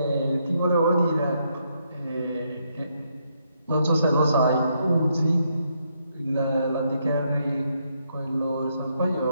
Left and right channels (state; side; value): inverted; both; correlation -0.76